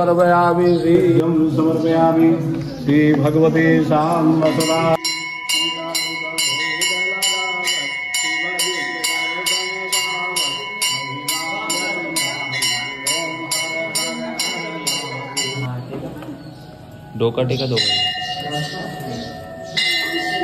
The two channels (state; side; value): identical; both; correlation 1.00